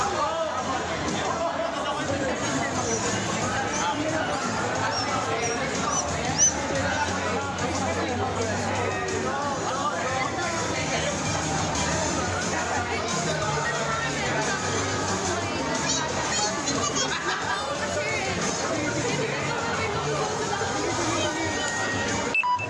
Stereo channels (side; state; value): both; identical; correlation 1.00